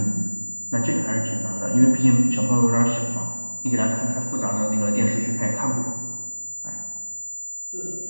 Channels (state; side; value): inverted; both; correlation -1.00